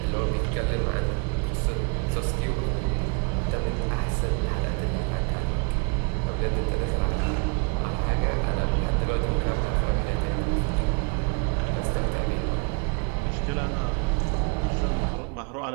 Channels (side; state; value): left; quieter; 32.1 dB